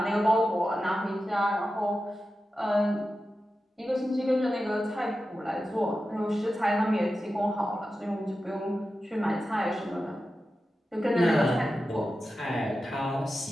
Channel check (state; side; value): normal; both; correlation 0.92